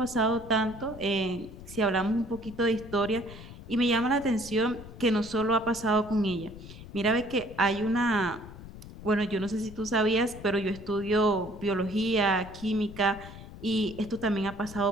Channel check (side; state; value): left; noise; rumble, 15 dB below the sound